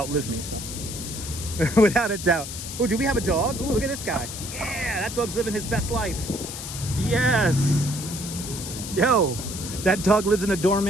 me, so without a doubt. Oh, do we have a dog? Oh, look at this guy. Yeah, that dog's living his best life. Yes. Yo, that dog lives in a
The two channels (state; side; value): noise; left; hiss, 8 dB below the sound